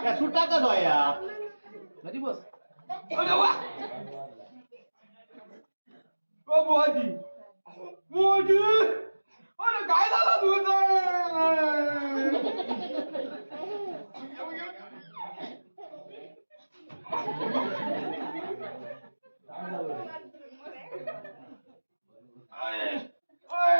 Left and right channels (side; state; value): both; inverted; correlation -1.00